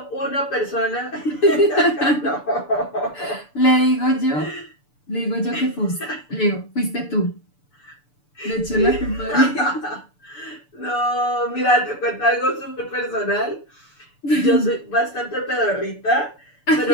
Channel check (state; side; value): late; right; 6.8 ms